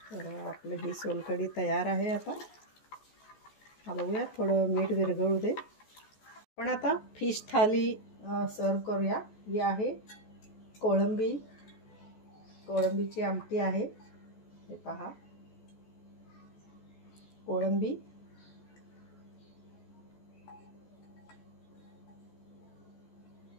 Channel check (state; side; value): late; right; 14 ms